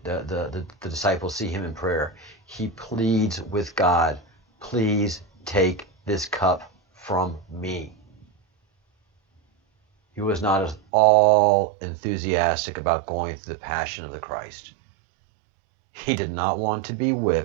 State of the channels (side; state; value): left; drops out; at 10.8 s